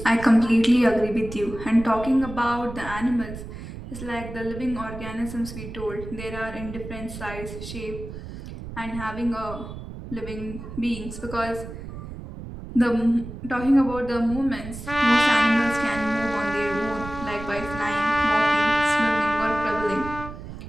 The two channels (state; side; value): noise; right; rumble, 11 dB below the sound